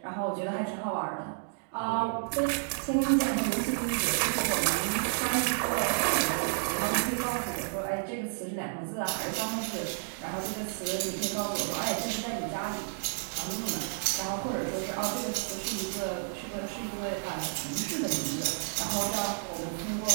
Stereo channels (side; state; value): left; silent; digital silence